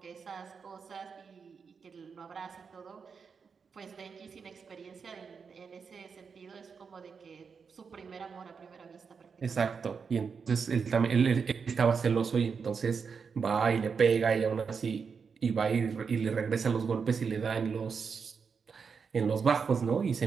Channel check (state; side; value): quieter; left; 5.8 dB